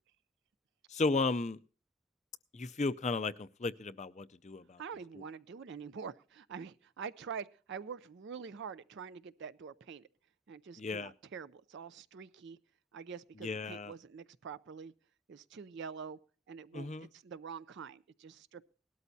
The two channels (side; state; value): both; normal; correlation 0.40